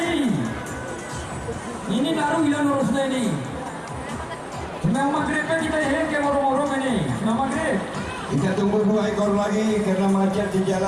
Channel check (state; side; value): identical; both; correlation 1.00